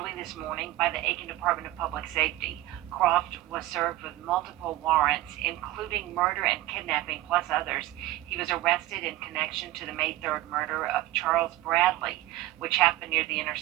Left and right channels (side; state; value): left; quieter; 16.3 dB